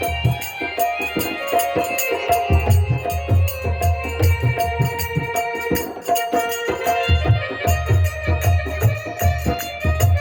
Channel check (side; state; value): both; identical; correlation 1.00